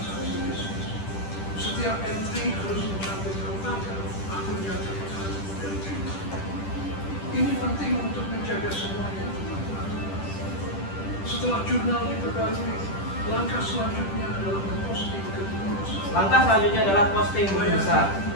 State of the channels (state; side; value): late; right; 10 ms